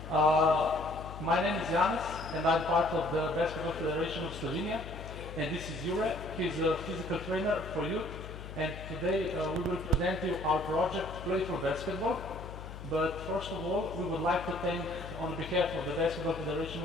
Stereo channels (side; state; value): left; noise; hum, 11 dB below the sound